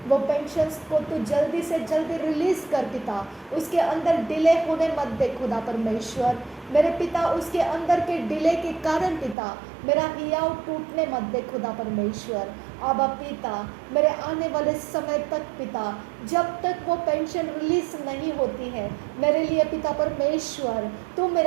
वो पेंशन्स को तू जल्दी से जल्दी रिलीज़ कर पिता, उसके अंदर डिले होने मत दे खुदा परमेश्वर। मेरे पिता उसके अंदर के डिले के कारण पिता मेरा हियाव टूटने मत दे खुदा परमेश्वर। आबा पिता मेरे आने वाले समय तक पिता, जब तक वो पेंशन रिलीज नहीं होती है, मेरे लिए पिता परमेश्वर तू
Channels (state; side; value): drops out; left; at 9.3 s